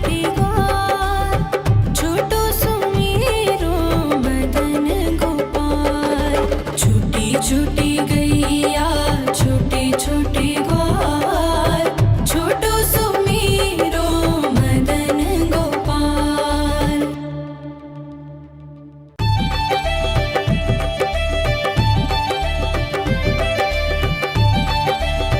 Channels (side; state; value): both; identical; correlation 1.00